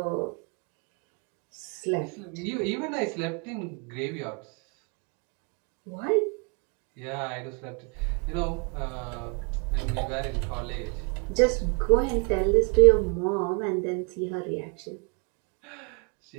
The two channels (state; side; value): quieter; left; 36.8 dB